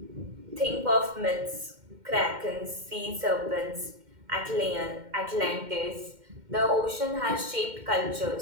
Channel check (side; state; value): left; late; 2.1 ms